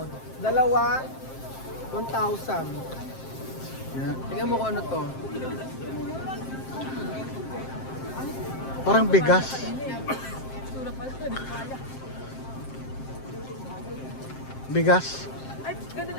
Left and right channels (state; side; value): late; right; 7.6 ms